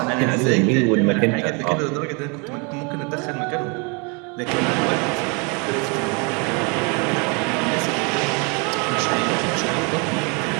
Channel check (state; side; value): quieter; left; 32.7 dB